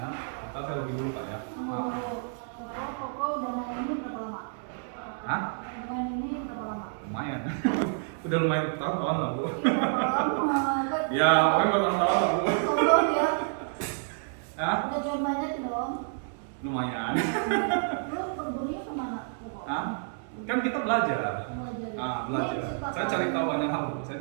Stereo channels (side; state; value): left; silent; digital silence